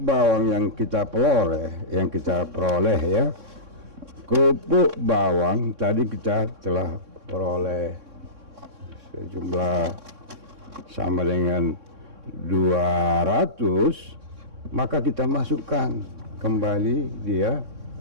yang kita peroleh, ya. Kerupuk bawang tadi kita telah peroleh sejumlah sama dengan 200, maka kita masukkan kembali dia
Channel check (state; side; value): late; left; 3.6 ms